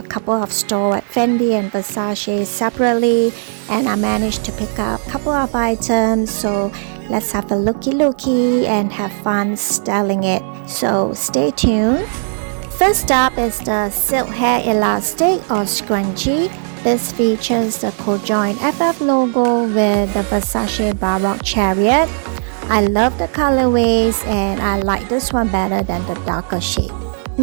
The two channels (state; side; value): silent; left; digital silence